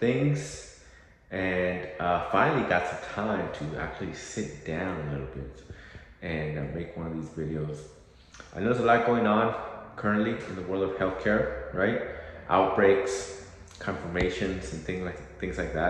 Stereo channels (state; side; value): identical; both; correlation 1.00